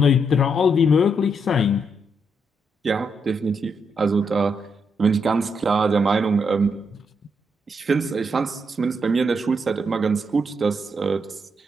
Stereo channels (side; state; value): both; normal; correlation 0.79